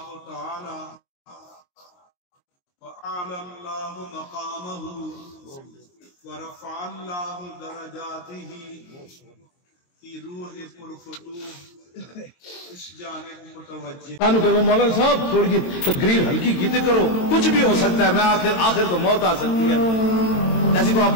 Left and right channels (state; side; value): late; right; 22 ms